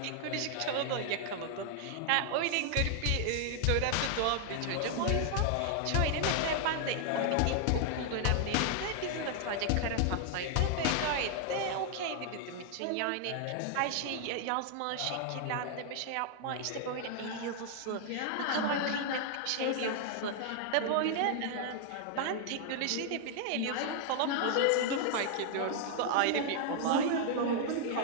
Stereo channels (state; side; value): different; both; correlation 0.00